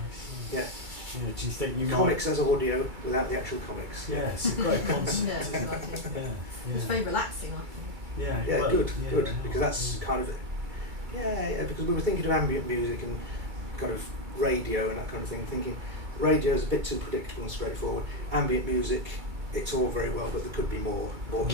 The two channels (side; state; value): left; late; 2.3 ms